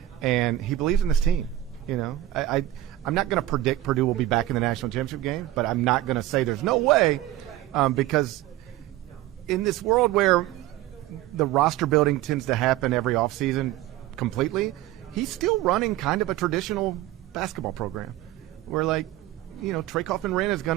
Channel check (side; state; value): left; quieter; 14.8 dB